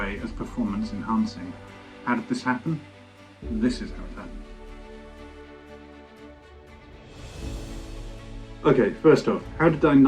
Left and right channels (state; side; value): identical; both; correlation 1.00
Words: as performance enhancing. How did this happen? This is how it happened. Okay, first off, how did I